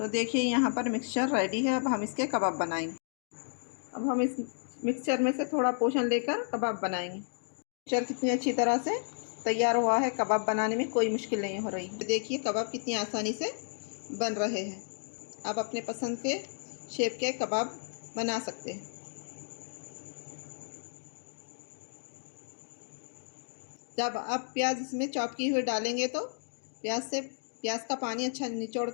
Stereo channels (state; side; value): silent; right; digital silence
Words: देखिए यहाँ पर मिक्सचर रेडी है। अब हम इसके कबाब बनाएंगे। अब हम इस मिक्सचर में से थोड़ा पोर्शन लेकर कबाब बनाएंगे। मिक्सचर कितनी अच्छी तरह से तैयार हुआ है। कबाब बनाने में कोई मुश्किल नहीं हो रही। देखिए कबाब कितनी आसानी से बन रहे हैं। आप अपने पसंद के शेप के कबाब बना सकते हैं। जब आप प्याज इसमें चॉप की हुई डालेंगे तो प्याज का पानी अच्छा निचोड़